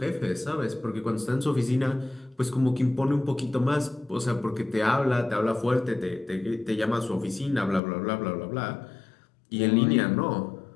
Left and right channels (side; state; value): right; drops out; at 7.8 s